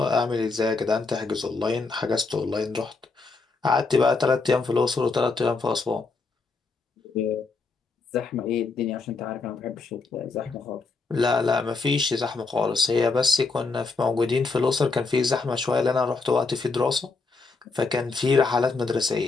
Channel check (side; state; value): right; quieter; 4.0 dB